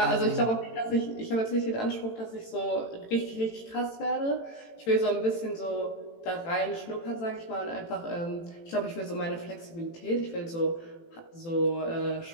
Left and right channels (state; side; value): late; right; 18 ms